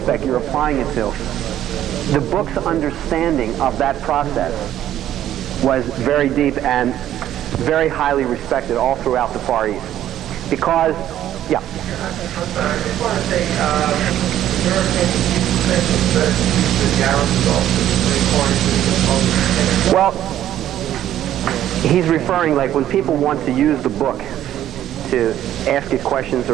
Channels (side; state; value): left; quieter; 11.9 dB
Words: you're applying it to, the book's understanding of that process was very deep and very highly respected all throughout the Far East. Because, yeah. I just want to say, there are many questions that the Gareth Well, he's referring, like, when people want to use the book to ask it questions